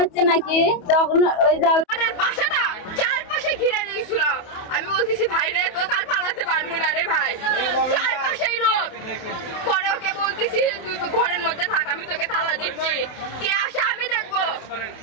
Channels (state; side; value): late; right; 28 ms